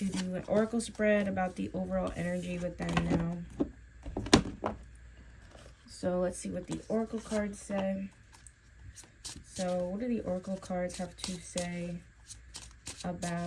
do an oracle spread about the overall energy with them now. So let's see what the oracle cards say. So what do the oracle cards have to say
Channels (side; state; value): both; identical; correlation 1.00